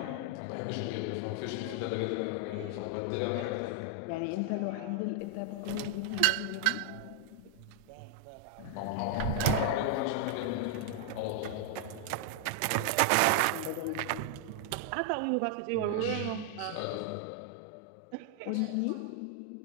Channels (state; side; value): different; both; correlation 0.00